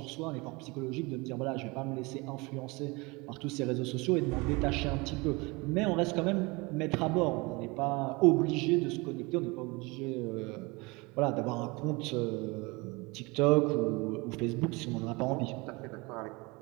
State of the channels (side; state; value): left; quieter; 25.8 dB